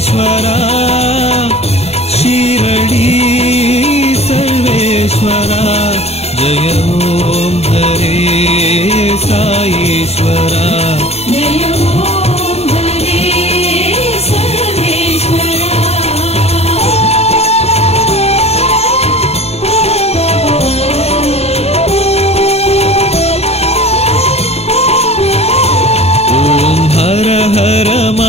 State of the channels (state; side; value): late; right; 0.30 ms